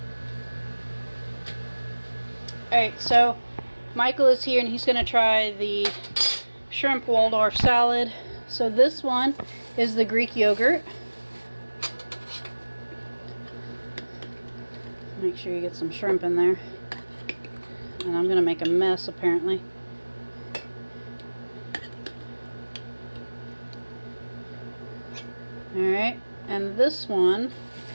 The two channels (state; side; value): inverted; both; correlation -1.00